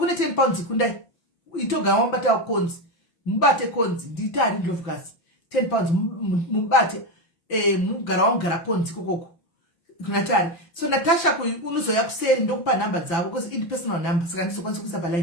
10 pounds kundai itoga wambata konzi mubate konzi nditari ndlovukasi 10 pounds mubate mugara konzi kokoko kunatari so Natasha unozoya kuseri ndokupa namba dzavo because it personal number saka ndizokwanisa kuisa pa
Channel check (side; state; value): right; late; 5.9 ms